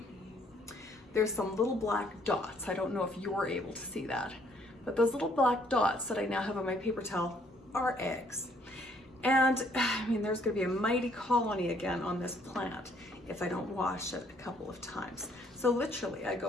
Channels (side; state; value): both; normal; correlation 0.65